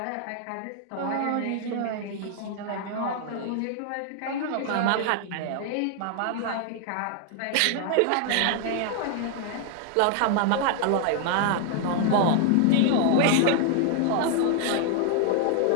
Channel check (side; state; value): both; different; correlation 0.00